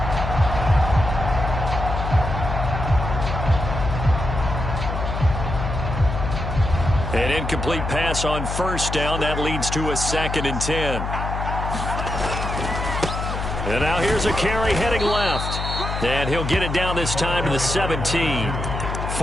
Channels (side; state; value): left; noise; hum, 4 dB below the sound